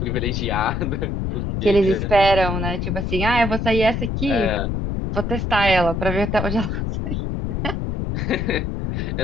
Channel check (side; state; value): left; noise; rumble, 1 dB below the sound